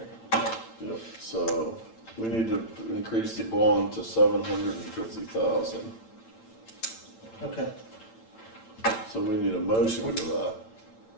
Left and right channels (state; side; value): late; right; 8.9 ms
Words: Yep, so we need to increase the bond to 750,000. Okay. So we need a motion for that.